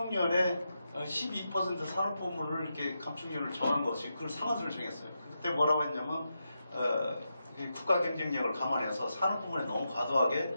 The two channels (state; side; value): inverted; both; correlation -0.86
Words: 12% 산업부문을 이렇게 감축률을 정한 것이 그걸 상한선을 정했어요. 그때 뭐라고 했냐면 국가 경쟁력을 감안해서 산업부문에 너무 과도하게